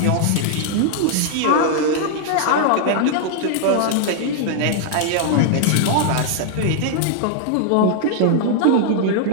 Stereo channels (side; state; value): both; different; correlation 0.00